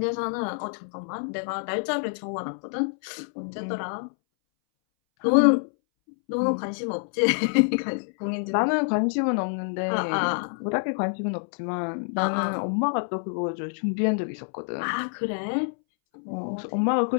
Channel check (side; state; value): right; silent; 60 dB below the other